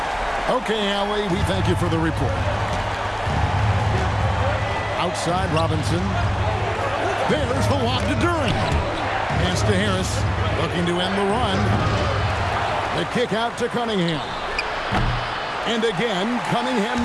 Okay, Allie, we thank you for the report. Outside, Robinson. There's the lob to Duran. Pass to Harris, looking to end the run. The kick out to Cunningham. And again, Cunningham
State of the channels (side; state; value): both; identical; correlation 1.00